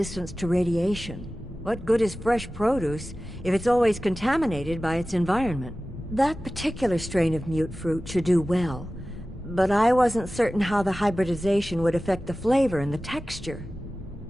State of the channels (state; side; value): normal; both; correlation 0.96